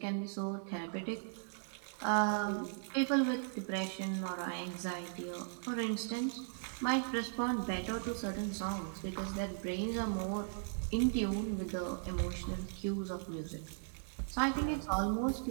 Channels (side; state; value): left; silent; digital silence